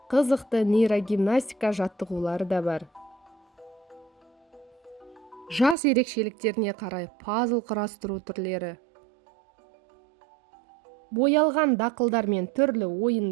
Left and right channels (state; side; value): drops out; left; at 5.8 s